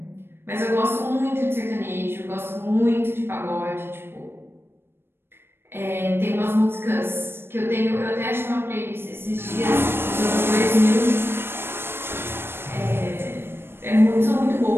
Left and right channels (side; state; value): left; late; 0.11 ms